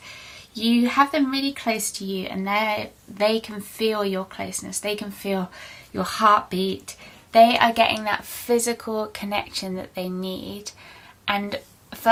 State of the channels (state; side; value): identical; both; correlation 1.00